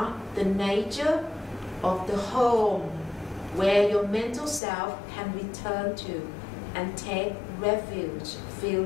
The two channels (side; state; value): right; drops out; at 4.6 s